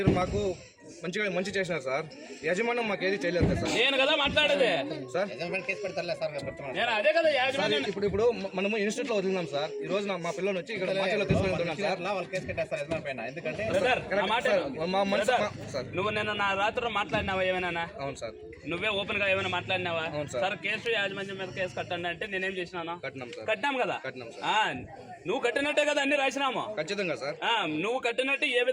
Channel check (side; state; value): both; identical; correlation 1.00